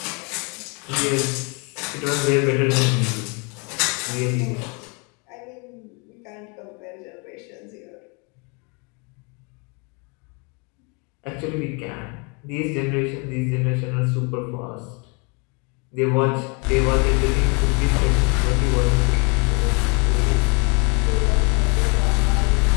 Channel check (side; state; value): right; quieter; 32.7 dB